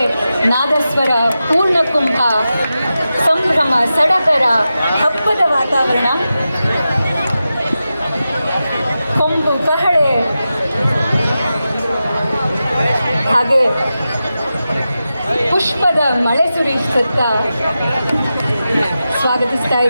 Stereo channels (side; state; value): both; inverted; correlation -0.92